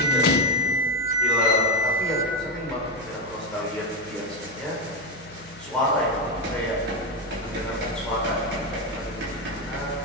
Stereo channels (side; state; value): right; noise; hum, 22 dB below the sound